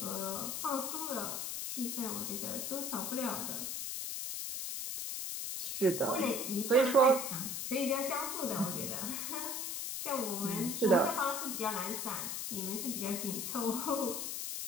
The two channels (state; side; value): noise; left; hiss, 3 dB below the sound